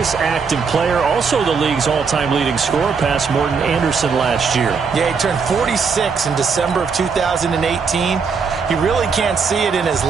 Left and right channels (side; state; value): left; quieter; 5.5 dB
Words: active player, also the league's all-time leading scorer, past Morton Anderson last year. Yeah, he turned 46 in December of 2018. He really can't see it in his